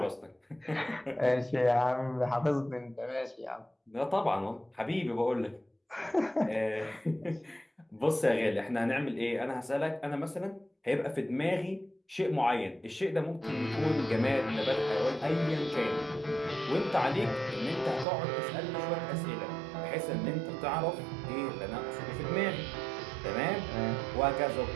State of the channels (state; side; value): drops out; left; at 18.1 s